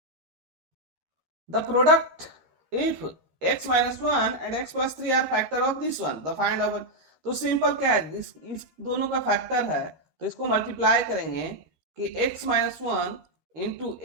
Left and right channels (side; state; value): left; late; 13 ms